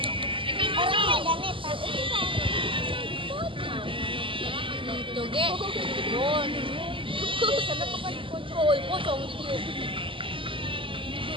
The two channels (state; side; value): late; left; 0.25 ms